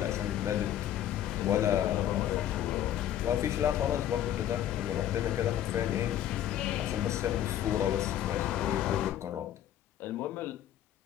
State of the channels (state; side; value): quieter; right; 11.4 dB